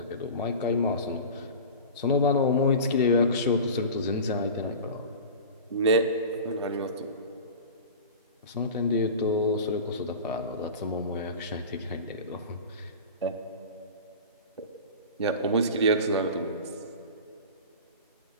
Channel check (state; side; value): inverted; both; correlation -0.34